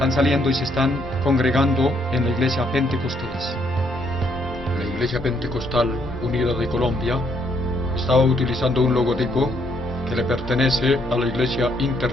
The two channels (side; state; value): both; normal; correlation 0.71